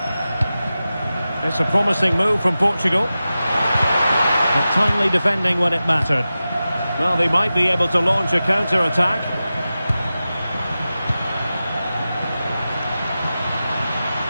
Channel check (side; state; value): both; inverted; correlation -0.94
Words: It's a promising move from Portugal. But timely defending when it mattered. Well, they might be able to launch a counter-attack.